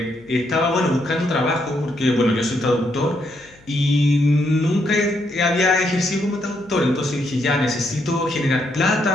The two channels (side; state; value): left; noise; hum, 28 dB below the sound